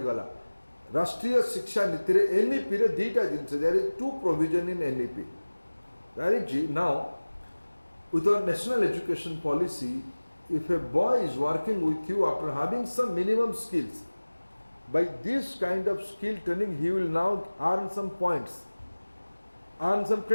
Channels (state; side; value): inverted; both; correlation -1.00